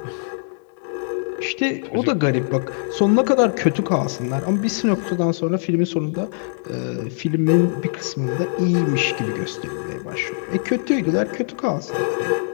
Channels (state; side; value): silent; right; digital silence